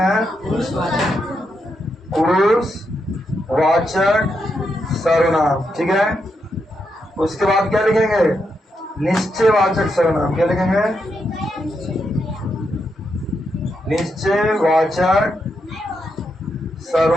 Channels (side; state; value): both; normal; correlation 0.82